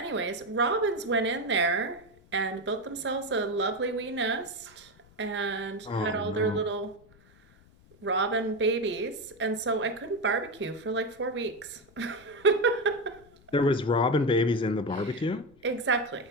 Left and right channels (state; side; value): noise; left; rumble, 27 dB below the sound